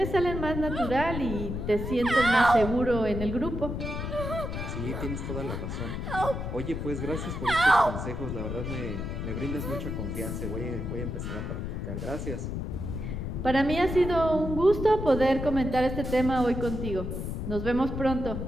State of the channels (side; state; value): left; noise; rumble, 4 dB below the sound